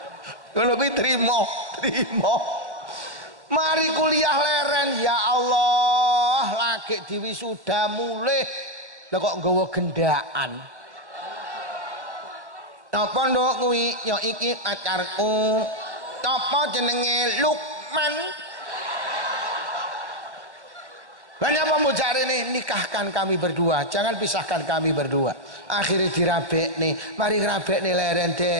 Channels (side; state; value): left; late; 1.1 ms